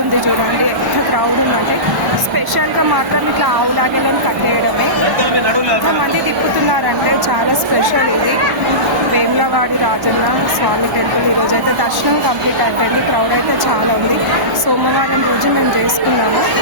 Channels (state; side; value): late; left; 1.1 ms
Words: చూడండి, ఎంత క్రౌడ్ ఉందంటే. స్పెషల్గా మాత్రం ఇట్లా ఆవులాగలను కట్టేయడమే. ఎంతమంది తిప్పుతున్నారంటే చాలా స్పెషల్ ఇది. వేములవాడి రాజన్న స్వామి టెంపుల్ ఈరోజు అయితే దర్శనం కంప్లీట్ అయిపోయింది. క్రౌడ్ అయితే చాలా ఉంది. సోమవారం రోజు మేము చేసుకున్నాము.